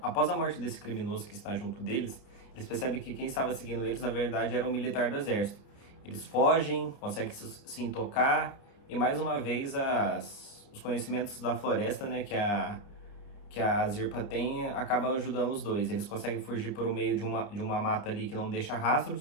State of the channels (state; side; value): late; right; 29 ms